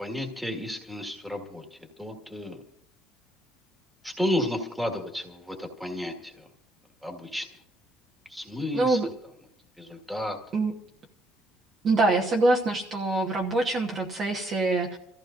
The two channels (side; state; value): both; normal; correlation 0.71